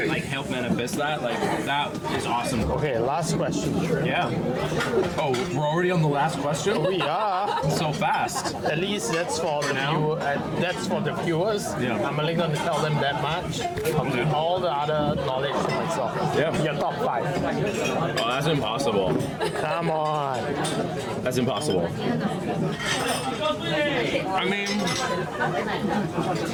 like, help manifest that, like, that is awesome. Okay, last question. Yeah. Oh, we're already on the last question? We are. So fast. At least that's for the viewers. I'm only going to tell them that much. All the other knowledge to myself. Your top 5. Oh, that's impossible. Come on. That's impossible. I mean,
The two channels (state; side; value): identical; both; correlation 1.00